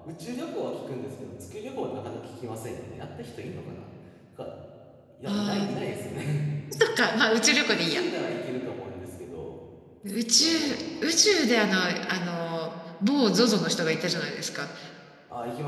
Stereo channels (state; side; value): identical; both; correlation 1.00